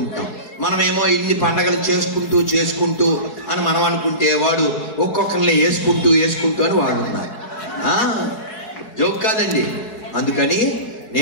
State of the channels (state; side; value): late; right; 4.7 ms